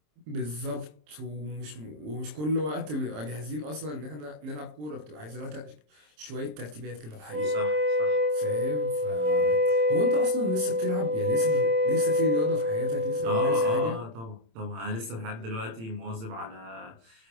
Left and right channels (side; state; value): left; late; 27 ms